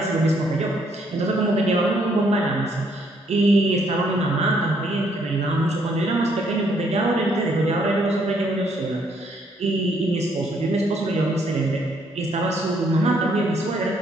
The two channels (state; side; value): normal; both; correlation 0.69